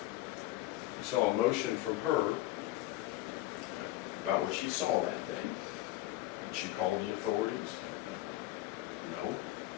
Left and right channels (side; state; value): right; quieter; 16.2 dB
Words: You saw emotion from her about what she saw that day. Did she call the authorities? No.